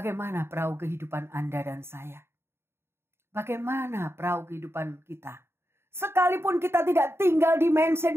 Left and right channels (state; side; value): late; left; 0.12 ms